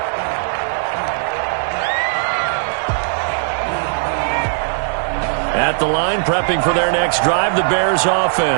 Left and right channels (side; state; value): left; silent; digital silence